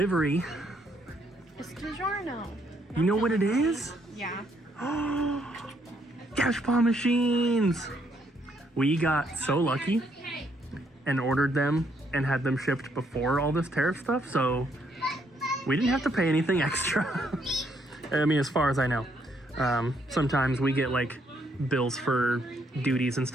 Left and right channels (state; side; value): normal; both; correlation 0.72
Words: It's DiGiorno. You know what it is? Yeah. Cash paw machines! We got so lucky and ordered them and had them shipped before all this tariff stuff, so we didn't have to pay anything extra. I mean, as far as I know. Sometimes we get like bills for duties and